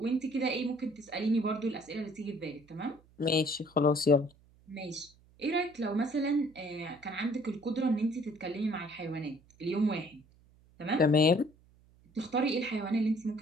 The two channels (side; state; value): right; noise; hum, 29 dB below the sound